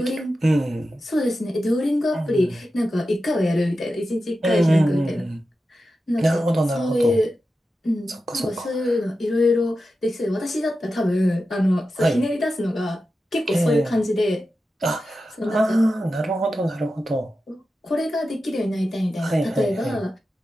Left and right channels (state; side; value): normal; both; correlation 0.91